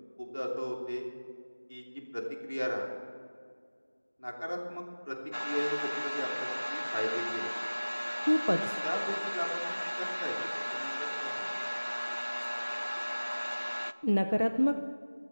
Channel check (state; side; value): inverted; both; correlation -1.00